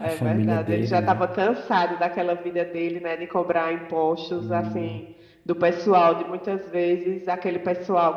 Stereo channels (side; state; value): both; identical; correlation 1.00